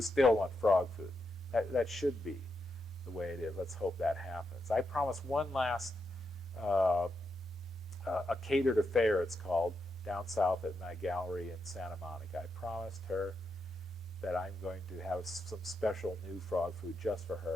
still want frog food. That should be the way it is. Let's hope that happens. I promise one last a catered affair, it's called, down south at my gallery in Santa Monica. I promised her that I'm going to have some special new frog food just for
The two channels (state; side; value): normal; both; correlation 0.84